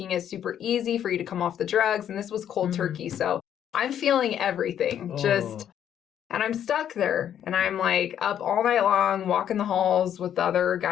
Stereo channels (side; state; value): right; quieter; 9.9 dB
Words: it super easy for you to come off the drugs. And this was cold turkey. So I'm feeling everything and I'm stuck there and I'm like up all night long, walking the halls with the other